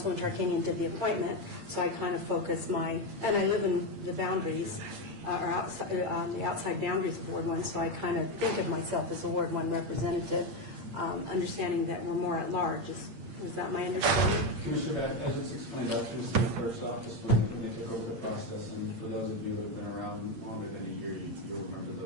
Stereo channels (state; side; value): late; left; 8.7 ms